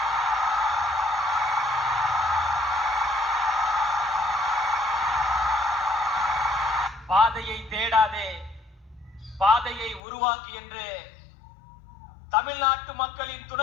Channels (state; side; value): drops out; right; at 10.0 s